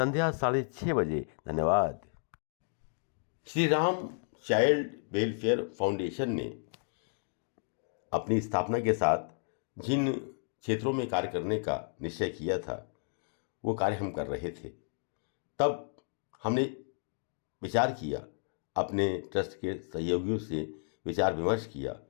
6:30 बजे। धन्यवाद। Shri Ram child welfare foundation ने अपनी स्थापना के साथ जिन क्षेत्रों में कार्य करने का निश्चय किया था वो कार्य हम कर रहे थे। तब हमने विचार किया, अपने ट्रस्ट के सहयोगियों से विचार विमर्श किया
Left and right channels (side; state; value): right; silent; digital silence